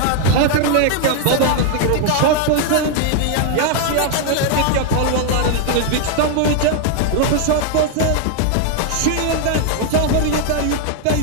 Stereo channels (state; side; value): different; both; correlation 0.00